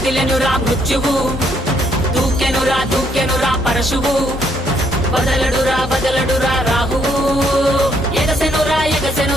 మృత్యువు, దూకెనురా పరశువు, బదలడురా రాహువు,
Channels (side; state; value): both; normal; correlation 0.71